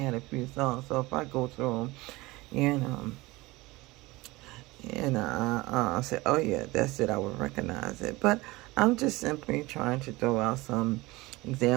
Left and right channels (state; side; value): quieter; left; 21.2 dB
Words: a few songs. So if I go through them, I say, oh yeah, that's it, I would recognize it. But I'm just simply trying to throw out some